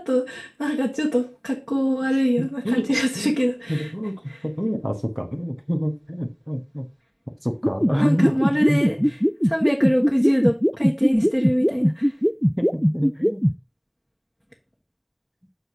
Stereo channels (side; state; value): both; identical; correlation 1.00